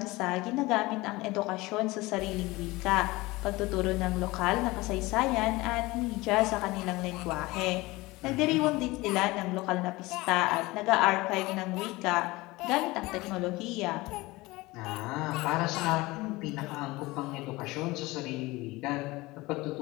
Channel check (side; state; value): right; quieter; 21.1 dB